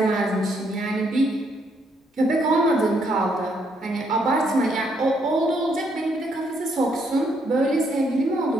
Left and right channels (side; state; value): both; normal; correlation 0.73